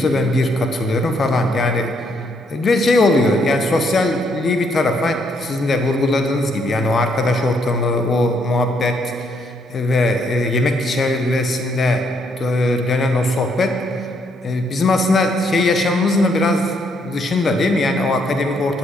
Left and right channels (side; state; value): both; normal; correlation 0.72